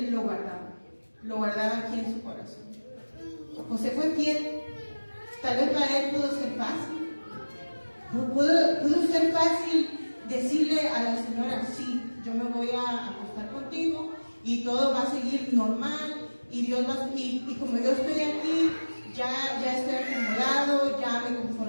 lo guardaba aquí en su corazón. José fue fiel. Tal vez para él pudo ser fácil. Pudo ser fácil decirle a la señora, sí, yo me voy a acostar contigo y todo va a seguir normal y Dios va y como yo estoy aquí, ya estoy acomodado, ya me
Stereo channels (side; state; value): both; inverted; correlation -1.00